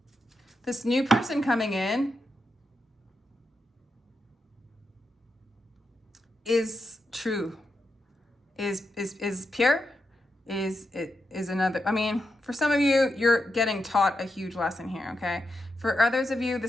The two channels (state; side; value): normal; both; correlation 0.86